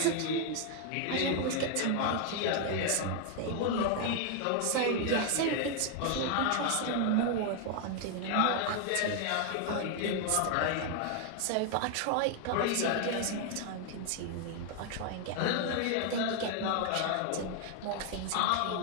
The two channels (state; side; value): different; both; correlation 0.00